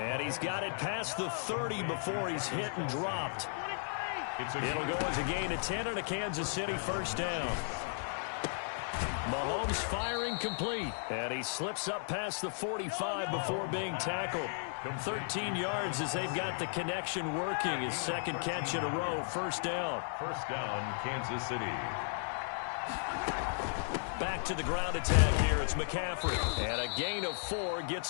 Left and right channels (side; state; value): right; silent; 54 dB below the other